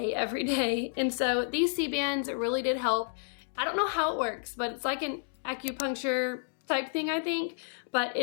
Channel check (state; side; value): silent; right; digital silence